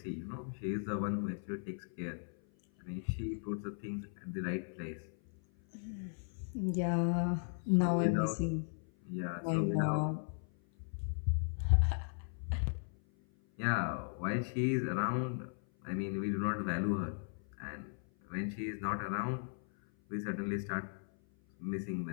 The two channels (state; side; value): silent; right; 53 dB below the other